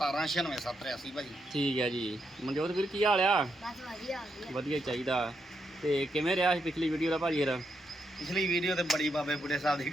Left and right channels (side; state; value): both; normal; correlation 0.81